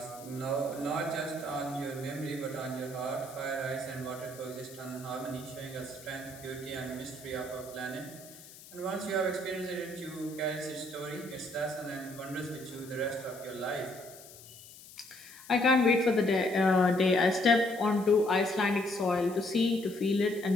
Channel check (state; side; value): noise; left; hiss, 18 dB below the sound